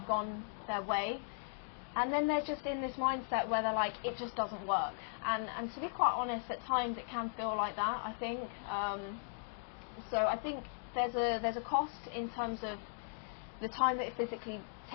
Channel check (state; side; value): silent; right; digital silence